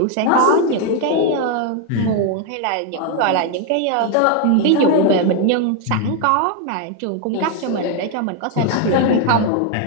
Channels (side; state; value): both; different; correlation 0.01